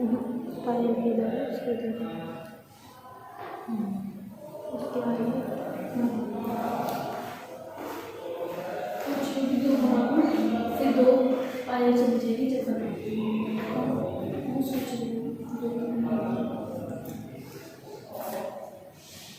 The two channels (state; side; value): identical; both; correlation 1.00